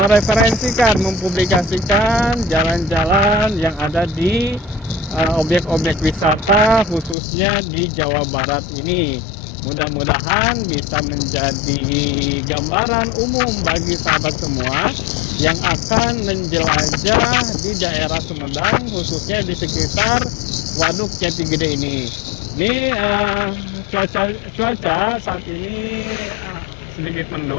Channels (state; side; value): drops out; right; at 7.2 s